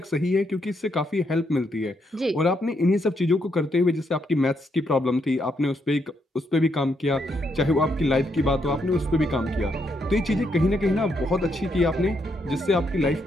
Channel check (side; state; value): both; normal; correlation 0.77